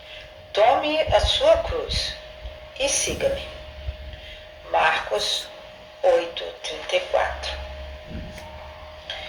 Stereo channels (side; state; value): both; identical; correlation 1.00